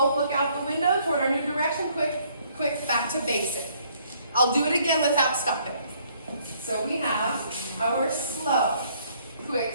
look out the window toward our new direction. Quick, quick, back to basic. I'll do it again without stopping. So we have our slow,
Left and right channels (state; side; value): inverted; both; correlation -0.65